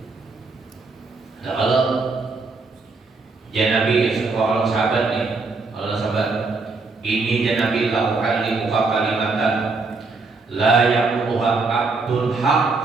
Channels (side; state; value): left; quieter; 4.0 dB